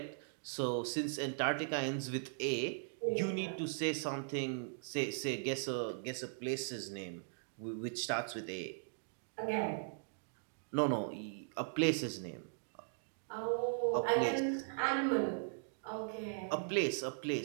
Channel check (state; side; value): silent; left; digital silence